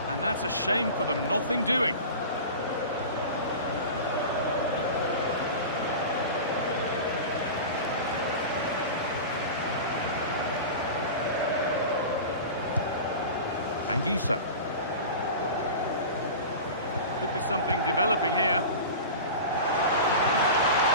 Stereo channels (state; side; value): inverted; both; correlation -0.32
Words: And that's a shame for them, nothing doing. Anguissa. Could be something developing here.